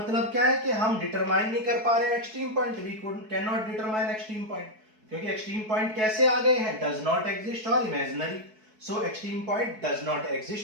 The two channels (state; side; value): late; left; 4.6 ms